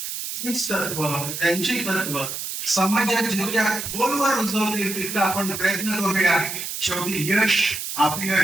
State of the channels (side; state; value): right; noise; hiss, 6 dB below the sound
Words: तीच तत्व, त्यांची तत्व समाजात जितक्या खोलवर रुजवतील तितका आपण प्रयत्न करूया. शेवटी यश